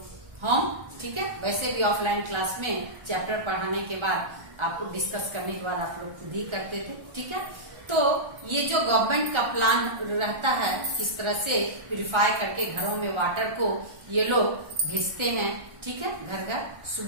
होम, ठीक है। वैसे भी ऑफलाइन क्लास में चैप्टर पढ़ाने के बाद आपको डिस्कस करने के बाद आप लोग खुद ही करते थे, ठीक है। तो ये जो गवर्नमेंट का प्लान रहता है, किस तरह से प्यूरिफाई करके घरों में वाटर को ये लोग भेजते हैं, ठीक है, घर घर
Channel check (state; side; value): late; left; 1.4 ms